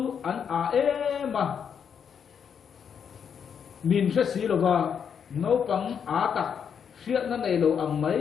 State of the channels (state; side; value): quieter; right; 7.4 dB